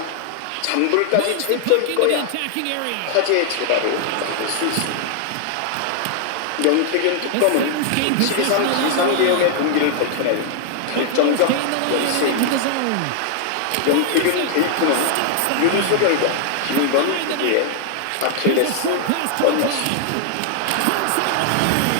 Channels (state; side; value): different; both; correlation 0.00